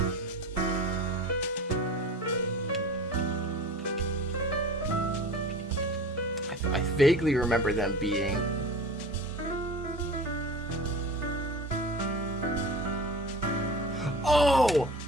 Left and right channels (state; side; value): normal; both; correlation 0.36